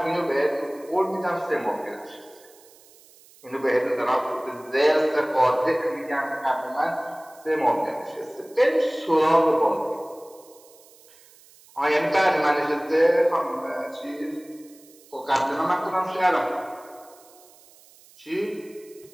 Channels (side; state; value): right; noise; hiss, 26 dB below the sound